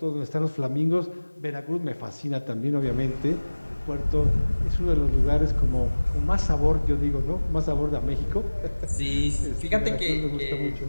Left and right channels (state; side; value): inverted; both; correlation -1.00